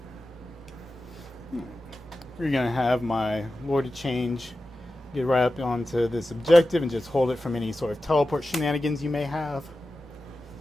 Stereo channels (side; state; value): both; normal; correlation 0.93